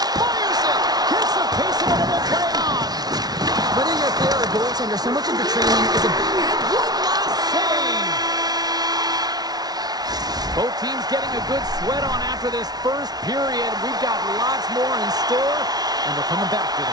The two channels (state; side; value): late; left; 0.19 ms